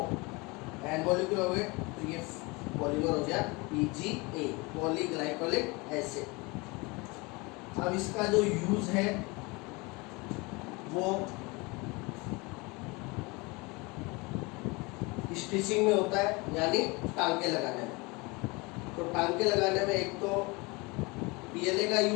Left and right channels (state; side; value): quieter; right; 26.1 dB